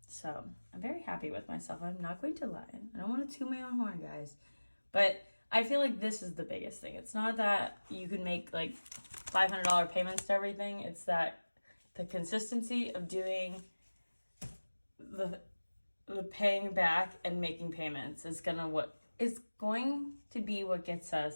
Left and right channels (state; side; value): inverted; both; correlation -1.00